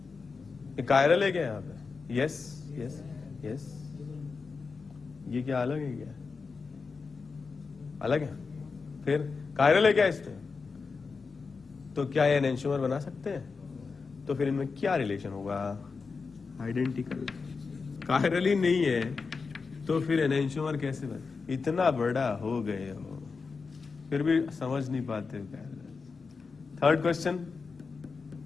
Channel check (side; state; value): right; quieter; 4.7 dB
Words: ये कायरल है क्या यहां पे? Yes yes yes. ये क्या अलग है क्या? अलग है। फिर कायरल है क्या इसमें? तो क्या ये एनेंशियोमर बना सकते हैं? तो फिर इनमें क्या रिलेशन होगा? आइडेंटिकल। कायरल ही नहीं है तो फिर एनेंशियोमर कैसे बने? इतना बड़ा हो गए हो फिर भी समझ नहीं पाते हो कायरल। थर्ड क्वेश्चन,